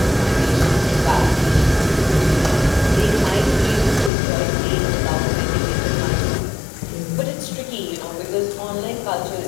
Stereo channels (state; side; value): drops out; right; at 4.1 s